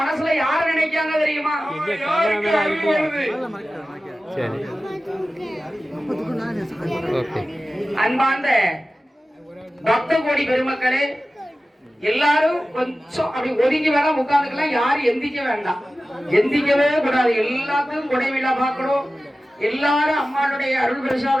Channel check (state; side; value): normal; both; correlation 0.95